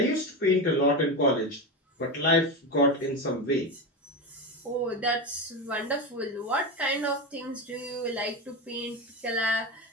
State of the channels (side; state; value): both; normal; correlation 0.18